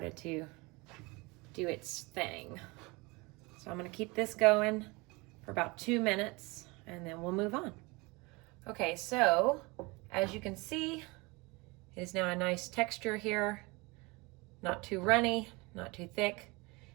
to do its thing. So I'm gonna keep this going for about 2 minutes, and then we'll move on. Okay, so as you can see, it is now a nice texture here. Not too runny, not too thick.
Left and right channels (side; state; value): left; quieter; 25.6 dB